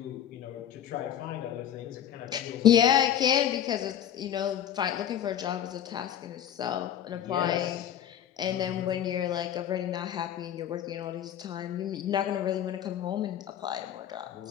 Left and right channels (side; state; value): right; quieter; 10.3 dB